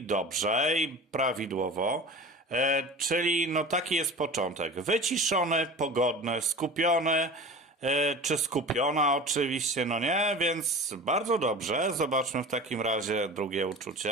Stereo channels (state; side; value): normal; both; correlation 0.35